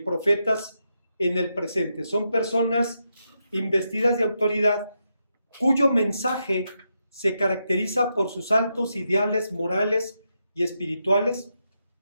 profetas en el presente. Son personas investidas de autoridad cuyo mensaje se caracteriza por sus altos ideales morales y espirituales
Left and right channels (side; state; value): both; inverted; correlation -0.84